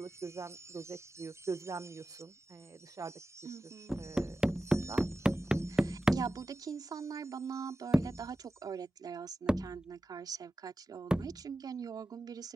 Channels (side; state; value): both; normal; correlation 0.93